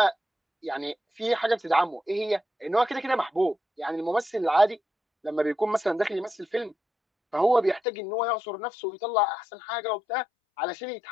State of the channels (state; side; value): drops out; right; at 7.8 s